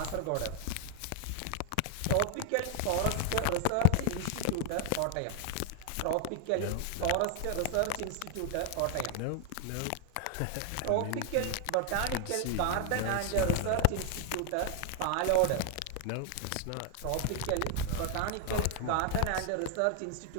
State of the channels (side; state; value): both; different; correlation 0.00